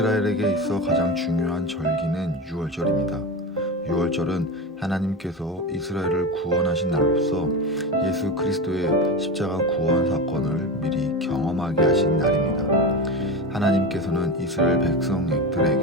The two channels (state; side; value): normal; both; correlation 0.22